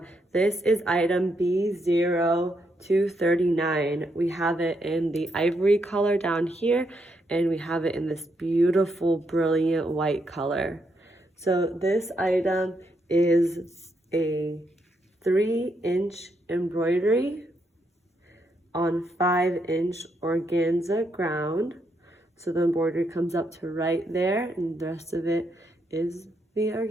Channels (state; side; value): normal; both; correlation 0.78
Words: This is item B0239. We have it in the ivory color down here, and we have it in this beautiful, brilliant white color. So this item is a 3-inch embroidery on 5-inch organza ground. So the embroidery comes up to right there, and the rest of it is the